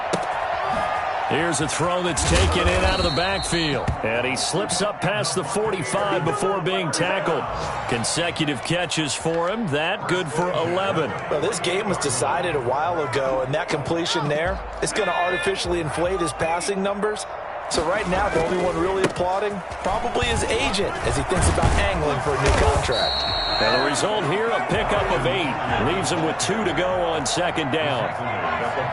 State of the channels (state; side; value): identical; both; correlation 1.00